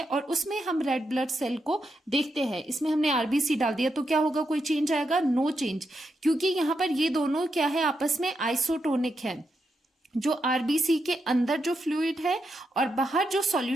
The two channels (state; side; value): normal; both; correlation 0.84